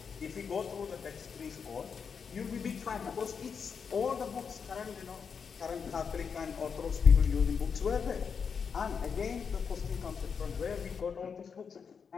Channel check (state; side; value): quieter; right; 6.3 dB